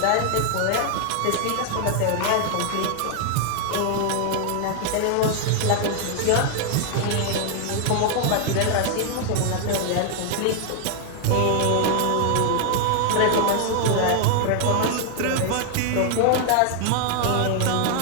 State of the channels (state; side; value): different; both; correlation 0.00